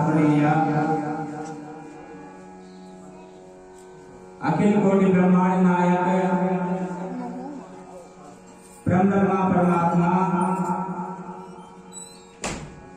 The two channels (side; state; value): both; identical; correlation 1.00